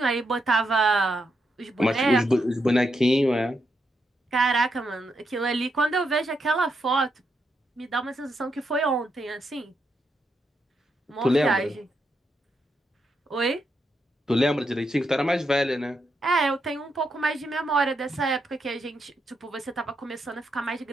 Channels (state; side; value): normal; both; correlation 0.81